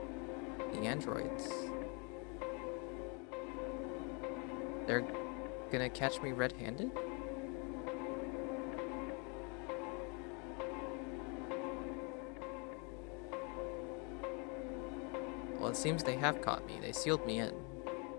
The androids. They're gonna catch me red-handed? Well, it seems they have caught me. They sealed me in.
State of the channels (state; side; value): quieter; right; 33.5 dB